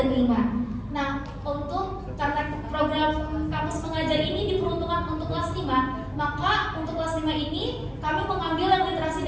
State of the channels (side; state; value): both; identical; correlation 1.00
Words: 5. Nah, karena program kampus mengajar ini diperuntukkan untuk kelas 5, maka untuk kelas 5 ini kami mengambil yang literasi